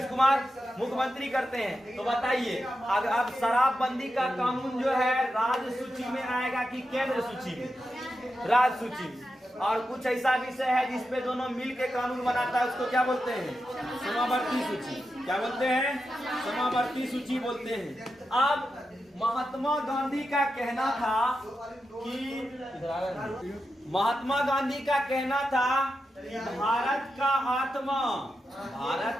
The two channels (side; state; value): both; normal; correlation 0.88